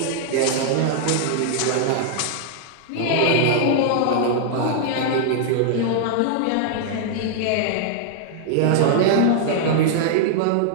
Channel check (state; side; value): different; both; correlation -0.01